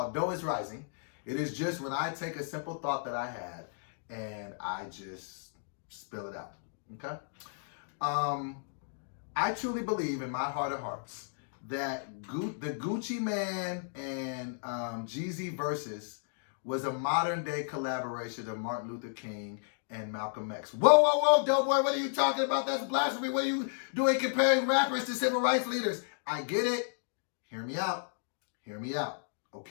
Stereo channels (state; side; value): silent; right; digital silence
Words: Dough is Rising. It is just when I take a simple thought that I had and I just spill it out. Okay? I truly believe in my heart of hearts that the Gucci Mane and Jeezy Versus was a modern day collaboration of Martin Luther King and Malcolm X. Whoa, Doughboy, what are you talking about? That's blasphemy. What are you doing comparing rappers to civil rights leaders? I get it. Hear me out.